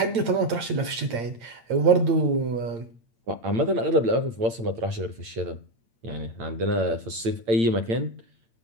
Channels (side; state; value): left; late; 8.8 ms